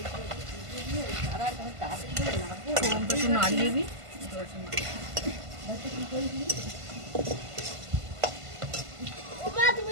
ফোড়নটা একটু নাড়িয়ে দিই। ওমা, তুমি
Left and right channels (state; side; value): late; left; 1.5 ms